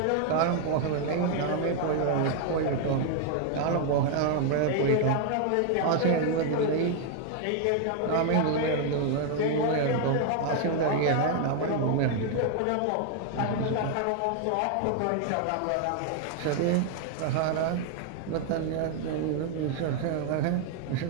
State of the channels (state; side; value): different; both; correlation 0.00